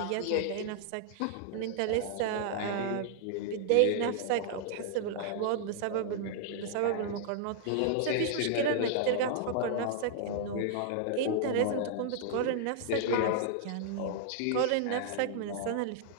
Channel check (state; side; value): different; both; correlation -0.01